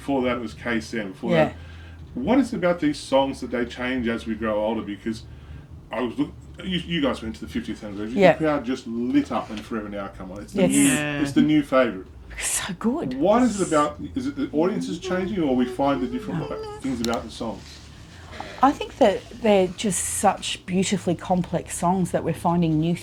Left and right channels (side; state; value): both; identical; correlation 1.00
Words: that it was KSM. Before Yeah. that, what is it about these songs that they change as we grow older? Because I was you guys went to the 50th anniversary. Yeah. The crowd just lit up when Forever Now come on. It's the Yes. new. Yeah. It's the new favourite. So good. What is it about? Is it the audience is changing, or we find the different things about the songs? I think that they're just such beautifully complex songs that we're finding new